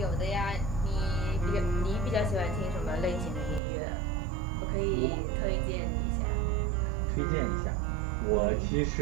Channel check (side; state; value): left; drops out; at 3.6 s